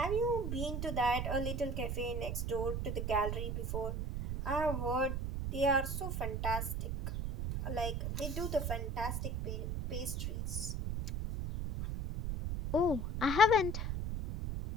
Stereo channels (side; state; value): right; noise; rumble, 2 dB below the sound